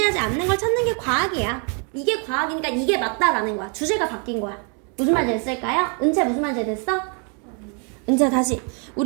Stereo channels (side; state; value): left; quieter; 38.6 dB